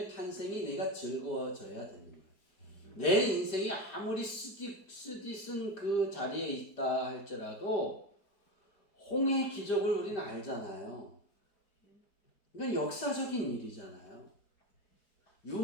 탄생이 내가 즐거워져야 되는 거예요. 내 인생이 아무리 쓰디쓴 그 자리에 있다 할지라도 홍해의 기적을 우리는 알잖아요. 이건 역사적인 일이잖아요.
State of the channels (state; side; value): late; right; 4.6 ms